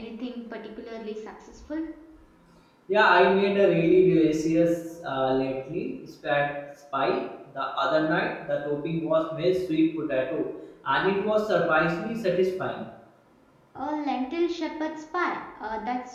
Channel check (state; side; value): identical; both; correlation 1.00